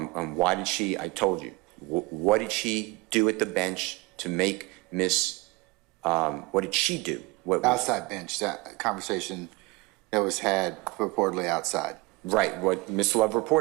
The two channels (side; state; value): left; quieter; 23.6 dB